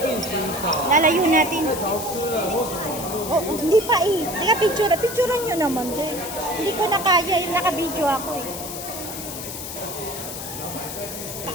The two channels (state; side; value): noise; left; hiss, 8 dB below the sound